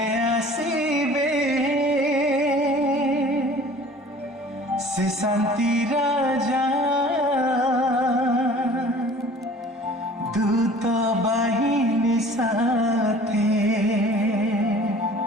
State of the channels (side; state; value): both; normal; correlation 0.47